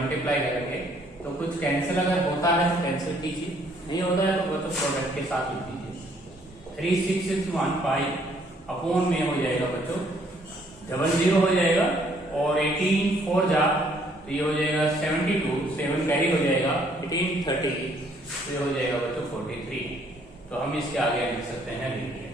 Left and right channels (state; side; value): normal; both; correlation 0.65